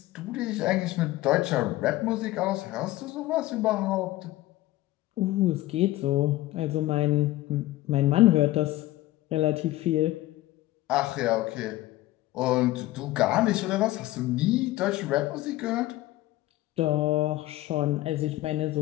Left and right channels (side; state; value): right; quieter; 16.7 dB